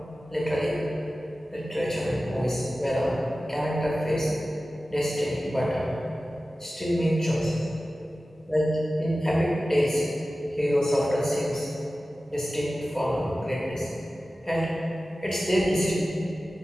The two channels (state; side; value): normal; both; correlation 0.95